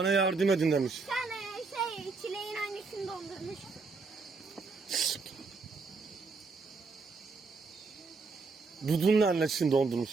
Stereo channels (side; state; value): left; quieter; 4.3 dB